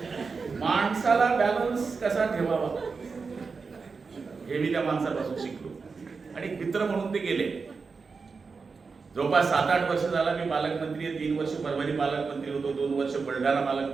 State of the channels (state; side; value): quieter; left; 4.8 dB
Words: माणसाला बॅलन्स कसा ठेवावा हे मी त्या माणसापासून शिकलो. आणि मित्र म्हणून ते गेले. जवळपास 7-8 वर्ष झाला मी पालकमंत्री आहे. 3 वर्ष परभणी पालकमंत्री होतो, 2 वर्ष बुलढाणा